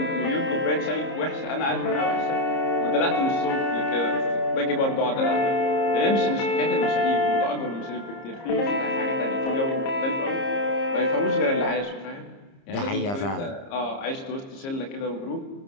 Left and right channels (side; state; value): right; late; 30 ms